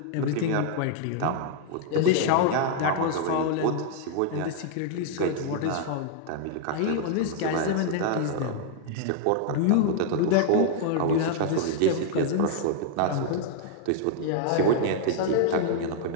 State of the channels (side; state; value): both; different; correlation -0.01